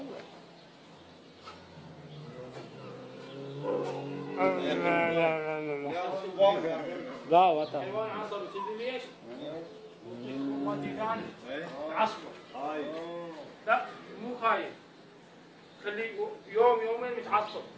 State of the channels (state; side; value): identical; both; correlation 1.00